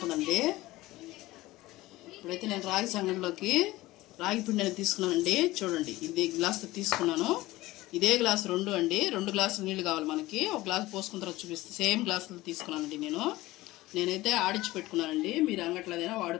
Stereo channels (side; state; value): right; quieter; 18.3 dB